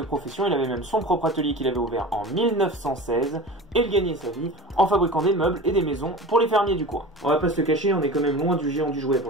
profession. Il avait même son propre atelier qu'il avait ouvert en 1916, et il gagnait sa vie en fabriquant des meubles et des maisons pour les fermiers du coin. On va pas se le cacher, on est quand même loin du géant du jouet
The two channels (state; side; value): normal; both; correlation 0.34